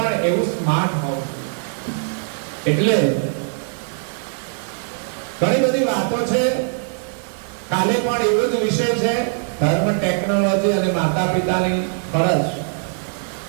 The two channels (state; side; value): silent; left; 62 dB below the other